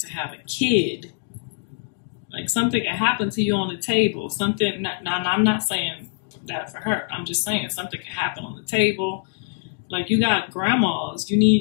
have a kid. Like, something can happen to you on the table. Something, now I'm not saying that for her. I'm just saying something can happen on the table. Like, you got grandmas. You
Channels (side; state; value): right; silent; 60 dB below the other